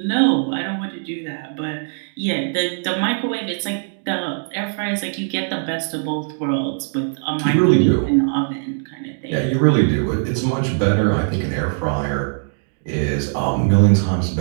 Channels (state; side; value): silent; left; digital silence